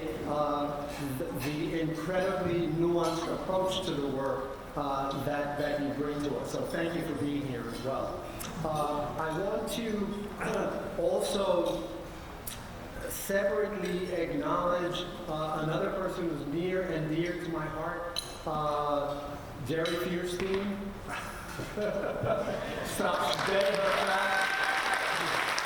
the incredibly nuanced approach to the work that you bring to us. So thank you for being here as well. I want to also separately acknowledge another person who's near and dear to my heart, Jerry Fierstein. Stops dead in her tracks.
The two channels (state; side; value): identical; both; correlation 1.00